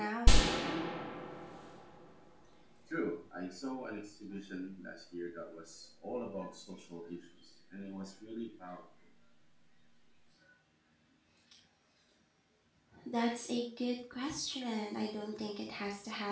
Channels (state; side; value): identical; both; correlation 1.00